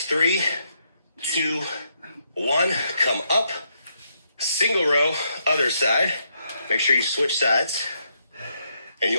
3, 2, 1. Come up. Single row, other side. Make sure you switch sides. And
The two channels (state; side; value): inverted; both; correlation -0.77